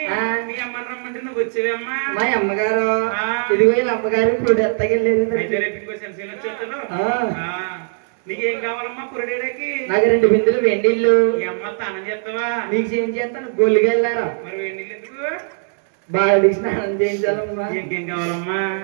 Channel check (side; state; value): left; silent; 66 dB below the other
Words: మీ అమ్మని రమ్మంటే నువ్వు వచ్చేవమ్మా? మా అమ్మగారు ఇదిగో వీళ్ళ అమ్మగారు ఇప్పుడు ఎత్తకెళ్ళేది. అయితే రేపు ఇంకో సెన్సీలు వచ్చేస్తాను. నీకేం కావాలమ్మా పురడేడకి? నాకు 2 బిందులు వెండిళ్ళు. ఈ అమ్మ స్నానం చేస్తావా? నీకు ఏం చేస్తాను? గొల్లికి వెళ్ళారా? మరి వెండిళ్ళు ఎందుకు? బాగా స్నానం చేయించాలమ్మా. ఇంకేం కావాలమ్మా?